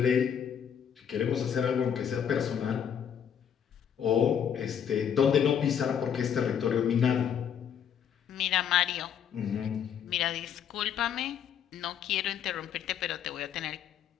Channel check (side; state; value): right; quieter; 8.4 dB